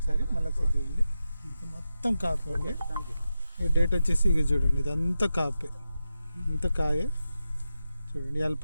మళ్ళీ చూడండి, మొత్తం కాపే అండి. ఈ డేట్ వచ్చేసి ఇక చూడండి, ఇదంతా కాపే, ఇంత కాయే చూడండి. ఇవాళ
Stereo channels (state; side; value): inverted; both; correlation -0.91